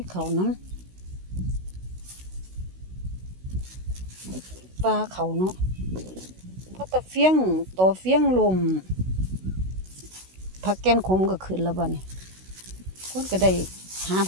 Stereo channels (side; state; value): left; late; 16 ms